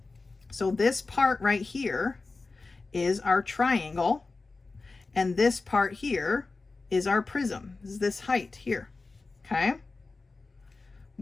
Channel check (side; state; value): right; quieter; 3.8 dB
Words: So this part right here is our triangle, and this part here is our prism. This is this height here, okay?